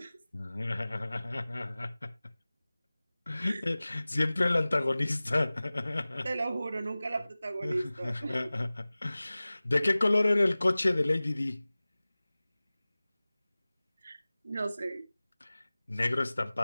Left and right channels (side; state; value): both; inverted; correlation -0.98